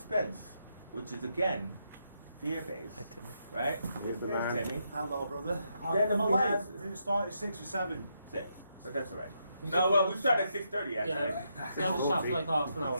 which is again fear-based, right? Here's Timmy. Hello, brother. Then I'm we late. have- Did it start at 6 or 7? 6, but that's all right. No, well, we started at 6:30 actually. Yeah, so I was shot for like half an hour.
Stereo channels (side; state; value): both; inverted; correlation -0.80